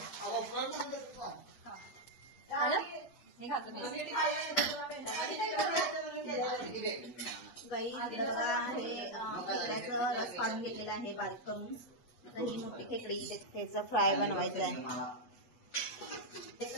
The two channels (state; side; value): late; right; 8.2 ms